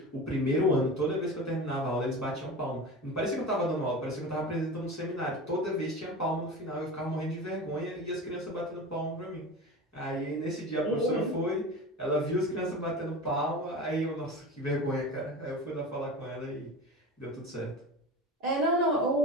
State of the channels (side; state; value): both; normal; correlation 0.31